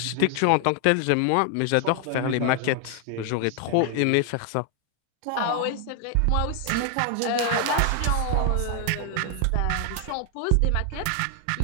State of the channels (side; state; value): both; different; correlation 0.00